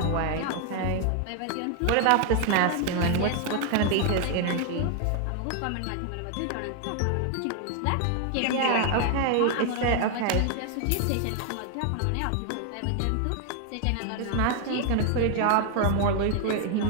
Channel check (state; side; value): different; both; correlation 0.00